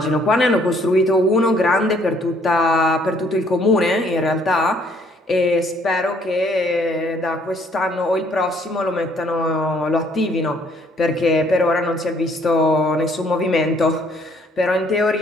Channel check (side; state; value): both; normal; correlation 0.63